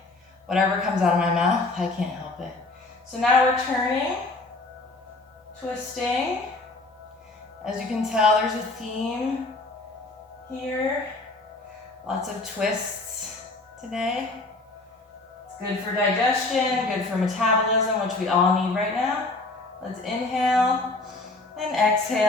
whatever comes out of my mouth, I can't help it. So now we're turning, twisting. As you can tell, there's a theme here. Lots of twists today. It's good for digestion, good for metabolism, which we all need right now. Let's inhale and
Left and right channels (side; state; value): right; quieter; 3.1 dB